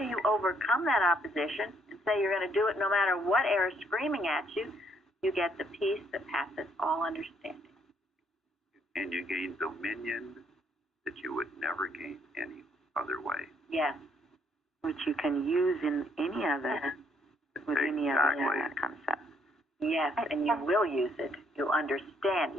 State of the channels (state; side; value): normal; both; correlation 0.69